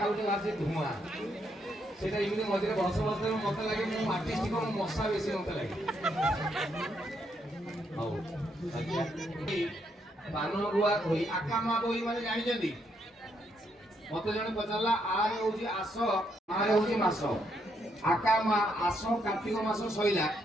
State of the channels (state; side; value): normal; both; correlation 0.76